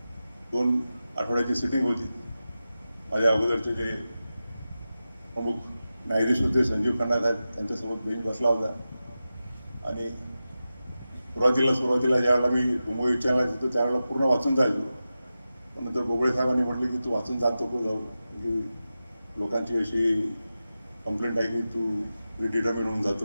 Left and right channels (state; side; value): inverted; both; correlation -0.93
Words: 2 आठवड्याची सिटिंग होती. माझ्या अगोदरचे जे प्रमुख न्यायाधीश होते संजीव खन्ना साहेब, त्यांच्यासोबत बेंच बसला होता. आणि सुरुवातीला ज्यावेळेला मी मुंबई उच्च न्यायालयात होतो त्यावेळेला पूर्ण वाचून जायचो. पण नंतर बोबळे साहेबांनी म्हटलं की तू वाचून जात नको जाऊ, की लोकांची अशी कंप्लेंट आहे की तू रिडिटर्मिन होऊन